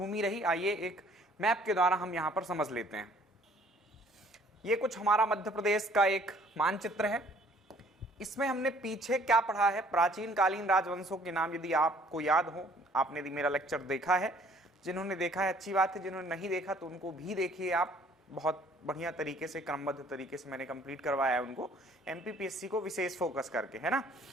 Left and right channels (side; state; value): both; normal; correlation 0.58